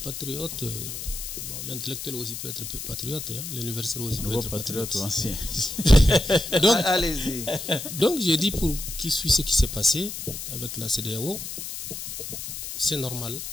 patriote. Bon, l'intellectuel aussi peut être patriote, hein. L'universitaire aussi peut être patriote. Ancien. Donc, allez-y. Donc, j'ai dit pour qui suit ce qui s'est passé avec la CEDEAO, c'est normal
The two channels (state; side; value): noise; left; hiss, 7 dB below the sound